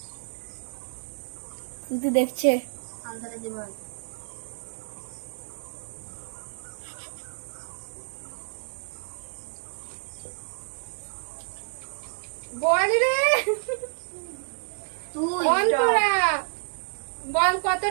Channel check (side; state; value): left; silent; digital silence